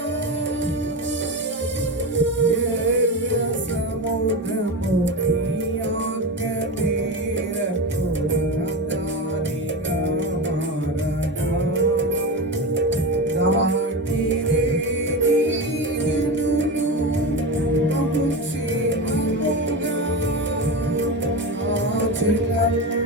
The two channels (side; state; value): both; normal; correlation 0.21